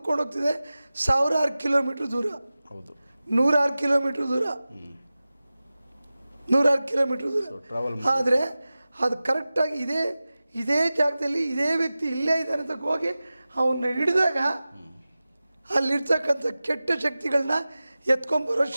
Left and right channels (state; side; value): inverted; both; correlation -0.96